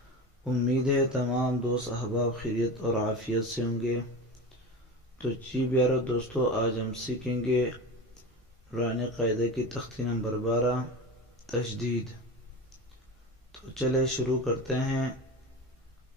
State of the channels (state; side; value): normal; both; correlation 0.28